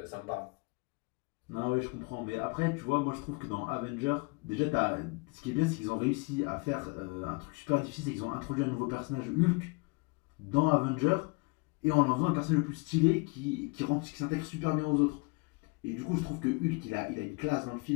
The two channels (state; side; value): quieter; right; 29.0 dB